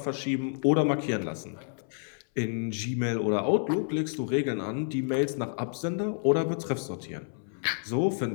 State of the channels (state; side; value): silent; right; 58 dB below the other